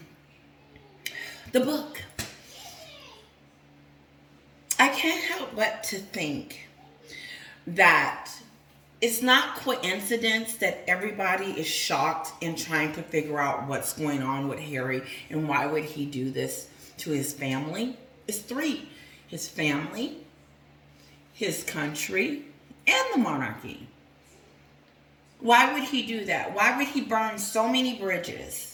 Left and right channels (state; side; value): identical; both; correlation 1.00